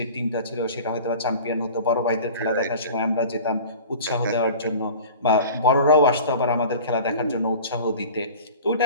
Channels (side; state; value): both; inverted; correlation -0.39